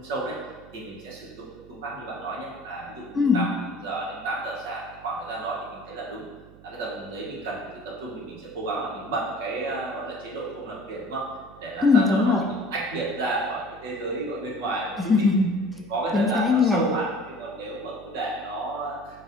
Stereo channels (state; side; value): noise; right; hum, 21 dB below the sound